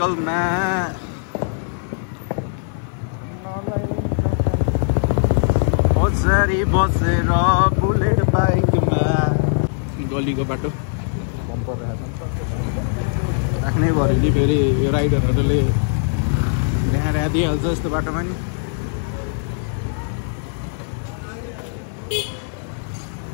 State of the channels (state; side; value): silent; right; 62 dB below the other